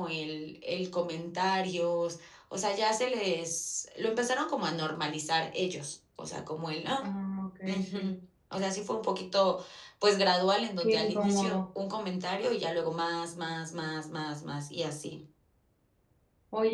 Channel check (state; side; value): identical; both; correlation 1.00